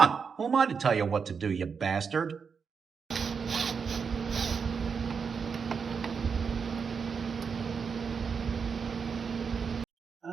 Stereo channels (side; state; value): left; quieter; 5.9 dB